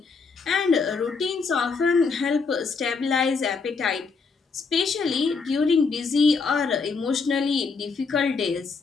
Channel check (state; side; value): quieter; right; 4.8 dB